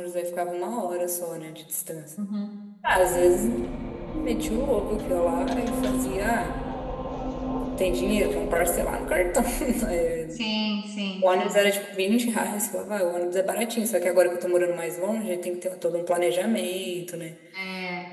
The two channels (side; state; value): both; identical; correlation 1.00